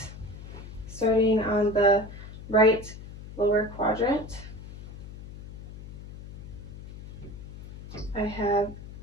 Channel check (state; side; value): noise; left; hum, 13 dB below the sound